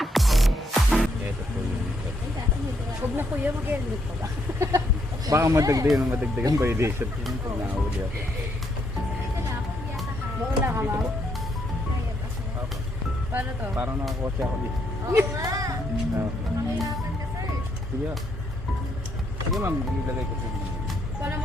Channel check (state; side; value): normal; both; correlation 0.74